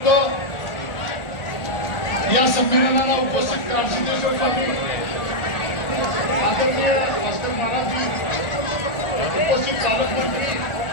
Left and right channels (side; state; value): right; late; 1.4 ms